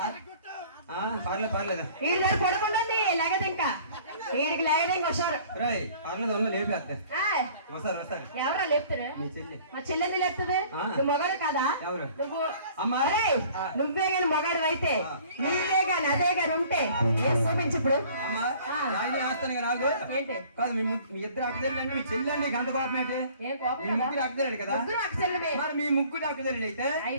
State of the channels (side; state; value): both; inverted; correlation -0.51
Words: పర్లేదు పర్లేదు వీడి దగ్గర పడుకుంటుంది లేగదు ఇంకా వీడికి లేగదు ఇంకా వస్తారు రాయ్ పర్లేదు ఉంది లేపేస్తా ఏయ్! వస్తారు వస్తారు ఎవరా లేపుతారు మీ చెల్లి మా చెల్లెంది లేపుతుంది ఆ. నువ్వు మగాడు కదా ఎవరు నువ్వు అమ్మా ఏయ్! ఆ. నువ్వే గాని మగాడు అయితే ఆ. నీవే గాని అదే గాని ఉంటే ఏ చూపించు ఇప్పుడు అమ్మా ఆ. రాజు వేస్తాను కదా నాకు ఏంటి కాదు మీ ఇద్దరు అక్కదెళ్ళండి మీ చెల్లి అండి గంట కోపం ఏంటి ఏం కోపం మీ ముగ్గురు అక్కదెళ్ళాడు కదా ముగ్గురు అక్క చెల్లెమే మరి మీ ముగ్గురు అక్కదెళ్ళి అయితే